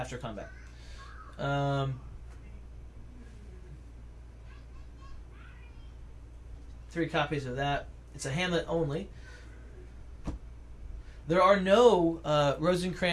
combat. 3 copies of that. It's a Hamlet only. There are no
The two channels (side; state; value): both; identical; correlation 1.00